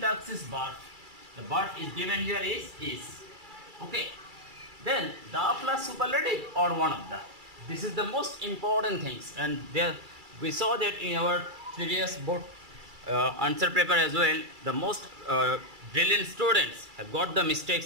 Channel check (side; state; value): left; late; 2.3 ms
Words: task is birth. The birth is given here is. Okay. Then the plus superlative or one of the. This is the most important things, and there we saw that in our previous board answer paper as well. The most brilliant students have got the